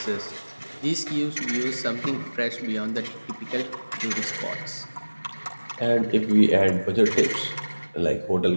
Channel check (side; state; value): both; inverted; correlation -1.00